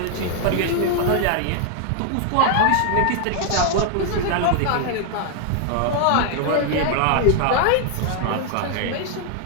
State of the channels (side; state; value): both; different; correlation 0.00